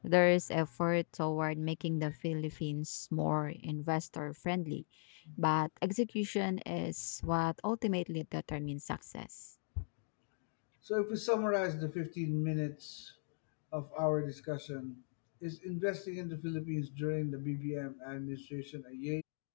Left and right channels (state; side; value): silent; right; digital silence